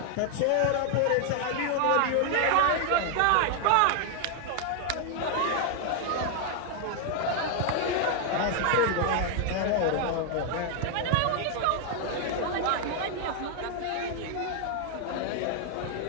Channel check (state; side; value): different; both; correlation 0.00